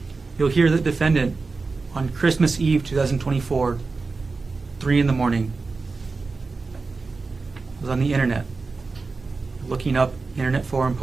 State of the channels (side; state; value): left; quieter; 4.1 dB